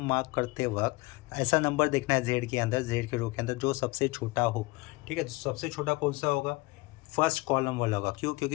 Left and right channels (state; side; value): quieter; right; 23.1 dB